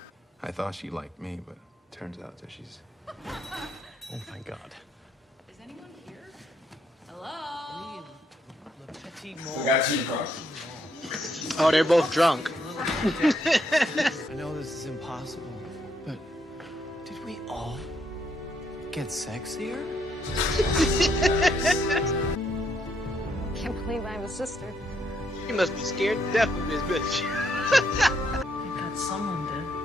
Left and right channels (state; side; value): normal; both; correlation 0.74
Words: I thought she liked me, but turns out that she's... Oh, my God. Is anyone here? Hello? We got cheating cards. Oh, they're both drunk. I know this is impossible, but did we all get sexier? Can't believe I have a sister. You must be scared to death of this bitch. I got someone to.